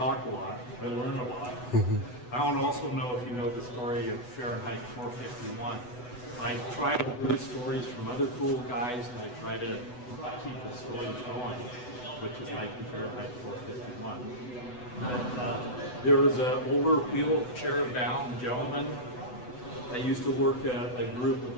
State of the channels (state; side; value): late; right; 8.1 ms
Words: a lot, I learn a lot. I don't also know if you know the story of Fahrenheit 451. I try to hear stories from other cool guys, and I try to keep the stories going, which is like Fahrenheit 451. There was an older wheelchair-bound gentleman. I used to work at a group with